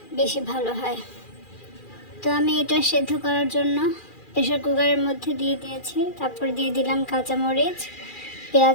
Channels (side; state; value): right; late; 2.4 ms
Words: বেশি ভালো হয়। তো আমি এটা সেদ্ধ করার জন্য প্রেশার কুকারের মধ্যে দিয়ে দিয়েছি। তারপর দিয়ে দিলাম কাঁচামরিচ,